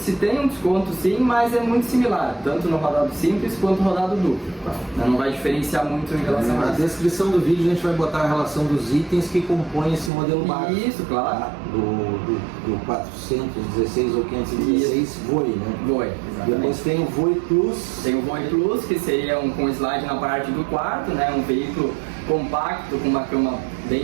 tem um desconto sim, mas é muito similar, tanto no rodado simples quanto no rodado duplo, tá? Não vai diferenciar muito em relação a isso. Na descrição do vídeo a gente vai botar a relação dos itens que compõem esse modelo básico. Isso, claro. Tá? Do 416 ou 516 Voe, né? Voe, exatamente. Depois tem o Voe Plus. Tem o Voe Plus, que seria com slide na parte do quarto, né? Um veículo compacto com uma cama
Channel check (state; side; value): drops out; left; at 10.1 s